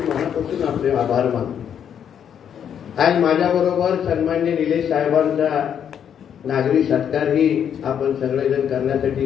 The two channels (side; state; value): right; quieter; 8.6 dB